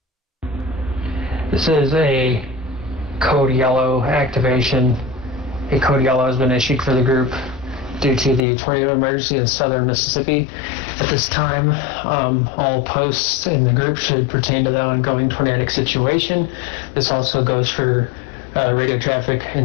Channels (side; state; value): right; drops out; at 8.4 s